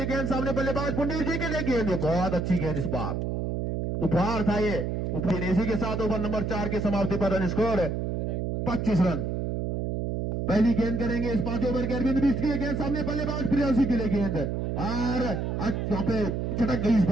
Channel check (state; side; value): noise; right; hum, 1 dB below the sound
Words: गेंद सामने बल्लेबाज पुंडीर जी के लिए गेंद, बहुत अच्छी गेंद इस बार, उपहार था ये। इसी के साथ ओवर नंबर 4 की समाप्ति पर रन स्कोर 25 रन। पहली गेंद करेंगे इस 5 ओवर के अरविंद बिष्ट की गेंद सामने बल्लेबाज प्रियांशु के लिए गेंद, और वहां पे चटक गई इस